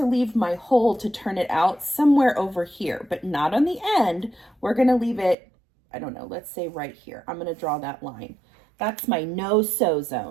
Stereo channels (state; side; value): drops out; left; at 5.4 s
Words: leave my hole to turn it out somewhere over here, but not on the end. We're going to leave it, I don't know, let's say right here. I'm going to draw that line. That's my no-sew